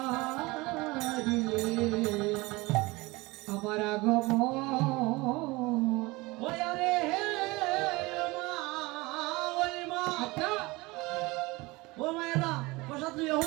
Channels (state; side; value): quieter; left; 22.8 dB